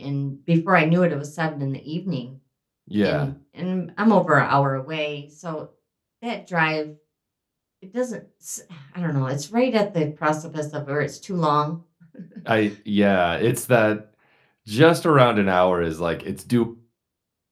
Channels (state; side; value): identical; both; correlation 1.00